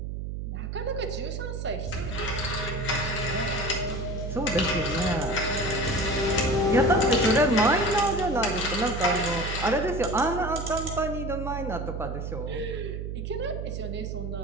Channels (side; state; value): right; noise; hum, 5 dB below the sound